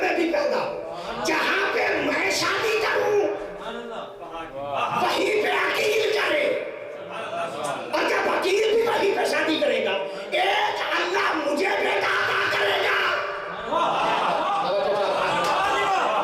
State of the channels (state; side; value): identical; both; correlation 1.00